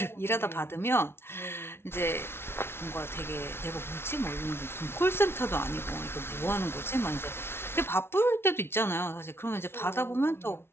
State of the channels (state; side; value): late; right; 0.12 ms